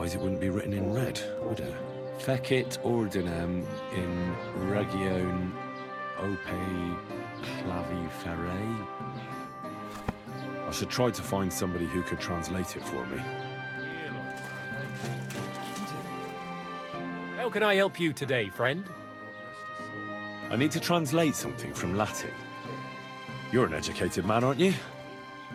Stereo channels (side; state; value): both; identical; correlation 1.00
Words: it wouldn't be written in red, would it? Fecit ordinem in region ope claviferae. I should try to find somebody who could translate it for me. How can I help you today, friend? I need to translate something from Latin. You're an educated man, aren't you?